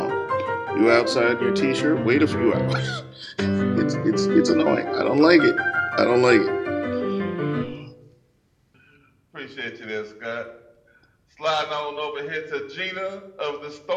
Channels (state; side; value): identical; both; correlation 1.00